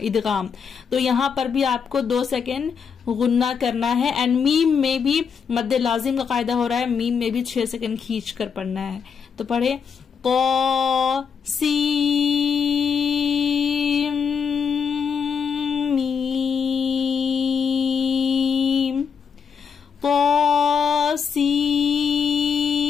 इदगाम। तो यहाँ पर भी आपको 2 सेकंड गुन्ना करना है, एंड मीम में भी मद्दे लाजिम का कायदा हो रहा है, मीम में भी 6 सेकंड खींच कर पढ़ना है। तो पढ़े, तो सीम मीम, तो सीम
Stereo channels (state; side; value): quieter; right; 6.5 dB